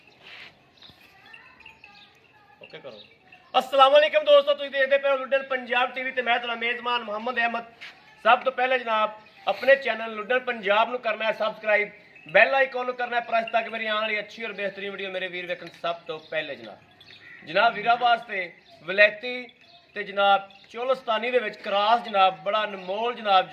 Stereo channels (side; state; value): both; identical; correlation 1.00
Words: ओके करो। अस्सलाम वालेकुम दोस्तों, तुसीं देखदे पे हो लुड्डन पंजाब टीवी ते मैं तुहाडा मेज़बान मुहम्मद अहमद। सब तो पहले जनाब अपने चैनल लुड्डन पंजाब नूं करना है सबसक्राइब, बैल आइकॉन नूं करना है प्रेस ताकि मेरी आने वाली अच्छी और बेहतरीन वीडियो मेरे वीर वेखण सब तो पहले। जनाब वीरा वास्ते वलैती ते जनाब चोलस्तानी दे विच क्रॉस जनाब बड़ा अनमोल जनाब